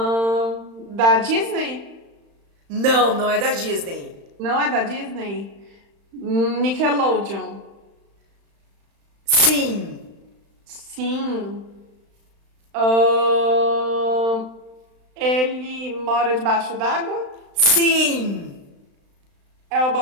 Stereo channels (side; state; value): left; late; 35 ms